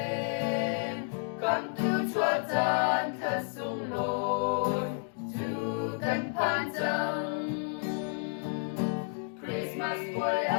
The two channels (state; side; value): silent; right; digital silence